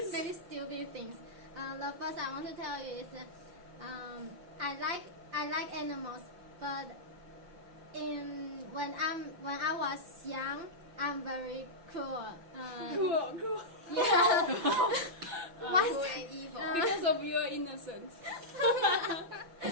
very stupid things. The first I want to tell you is I like animals, but when I was young, I'm very cruel. Cool. Yeah. Cruel and evil. Because of your innocence.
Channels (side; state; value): left; late; 5.9 ms